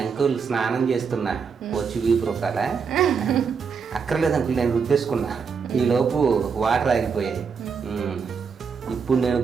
అంకుల్ స్నానం చేస్తున్నా వచ్చి వీపు రొక్కాలా, అక్కర్లేదు అంకుల్ నేను రుద్దేసుకున్నా, ఈలోపు వాటర్ ఆగిపోయాయి. ఇప్పుడు నేను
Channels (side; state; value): left; quieter; 5.9 dB